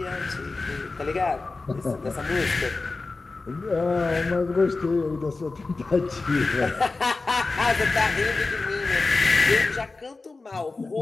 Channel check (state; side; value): quieter; right; 3.7 dB